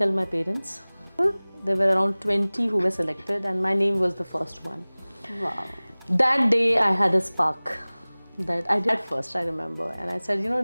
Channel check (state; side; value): inverted; both; correlation -1.00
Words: my parents. There were around 20 who were selected and my name was the first one. Wow. That day I had a spark that I did first, I remember. And I said,